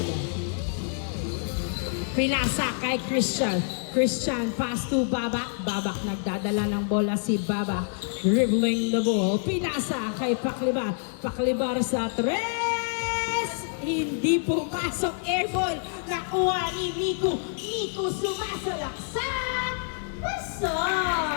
Pinasa kay Christian. Christian, pass to Babak. Babak, nagdadala ng bola si Babak. Dribbling the ball. Pinasa kay Paklibar. Paklibar sa tres. Hindi pumasok. Airball. Nakuha ni Miku. Miku sumasalaksak.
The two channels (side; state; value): right; silent; 60 dB below the other